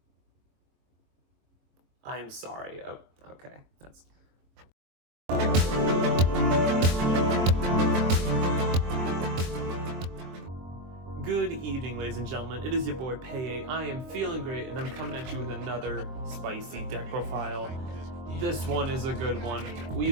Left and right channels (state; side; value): late; left; 23 ms